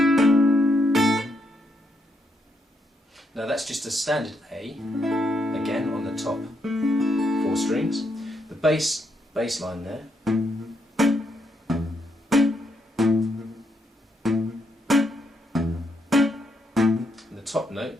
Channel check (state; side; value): normal; both; correlation 0.78